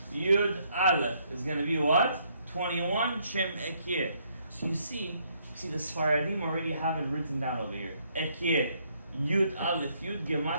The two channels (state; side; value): inverted; both; correlation -0.70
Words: Yud, aleph is going to be what? 21 shem ekye. So you see the Sfaradim already have it written down over here. Ekye, Yud, aleph, Yud,